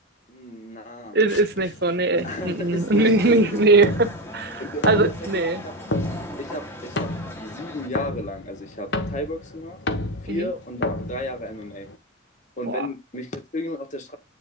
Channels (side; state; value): both; normal; correlation 0.14